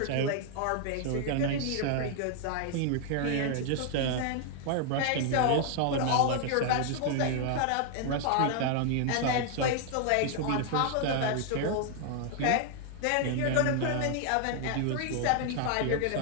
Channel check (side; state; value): both; different; correlation 0.00